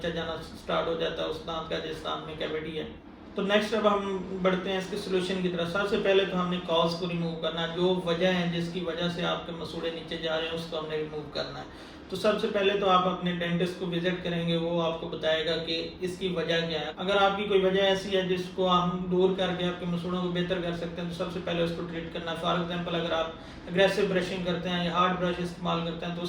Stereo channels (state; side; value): identical; both; correlation 1.00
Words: जाना स्टार्ट हो जाता है उस दांत का जिस दांत में कैविटी है। तो नेक्स्ट अब हम बढ़ते हैं इसके सोल्यूशन की तरफ। सबसे पहले तो हमने कॉज को रिमूव करना है, जो वजह है जिसकी वजह से आपके मसूड़े नीचे जा रहे हैं उसको हमने रिमूव करना है। तो सबसे पहले तो आप अपने डेंटिस्ट को विजिट करेंगे, वो आपको बताएगा कि इसकी वजह क्या है। अगर आपकी कोई वजह ऐसी है जिसको हम दूर करके आपके मसूड़ों को बेहतर कर सकते हैं तो सबसे पहले उसको ट्रीट करना है। फॉर एग्जांपल अगर आप अग्रेसिव ब्रशिंग करते हैं या हार्ड ब्रश इस्तेमाल करते हैं तो